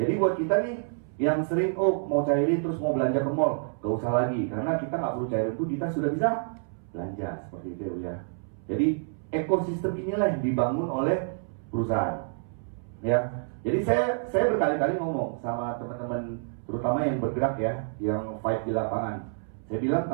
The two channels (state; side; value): silent; left; 59 dB below the other